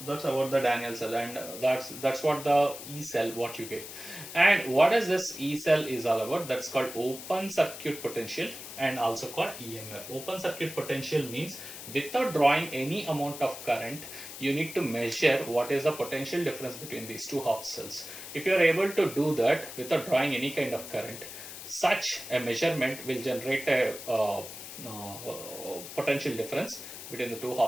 the Daniell cell, and that's what the E cell what you get. And what is this E cell is all about? That's called open circuit potential and also called EMF. Open circuit potential means without drawing any amount of current, you need to measure what is the potential difference between these two half cells. If you are able to do that without drawing any kind of current, such a measurement will generate a potential difference between the two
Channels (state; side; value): noise; left; hiss, 11 dB below the sound